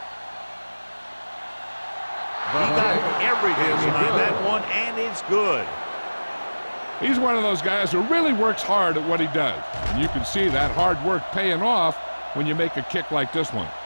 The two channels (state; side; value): inverted; both; correlation -1.00